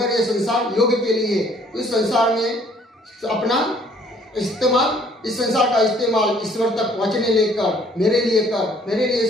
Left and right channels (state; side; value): normal; both; correlation 0.60